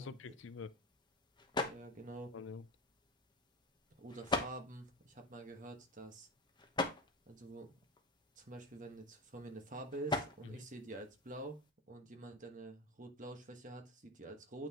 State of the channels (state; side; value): normal; both; correlation 0.22